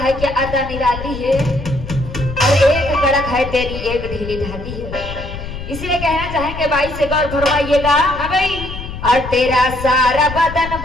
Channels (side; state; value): left; noise; rumble, 9 dB below the sound